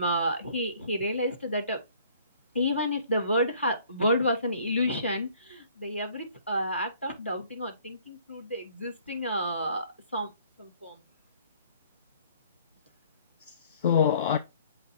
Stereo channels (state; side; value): inverted; both; correlation -0.57